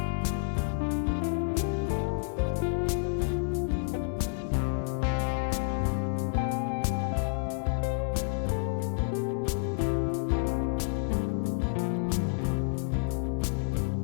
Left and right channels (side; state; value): right; silent; 58 dB below the other